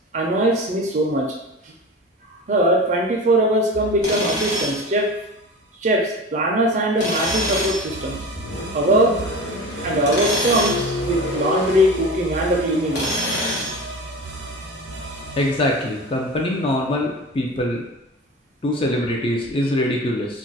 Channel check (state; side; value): normal; both; correlation 0.32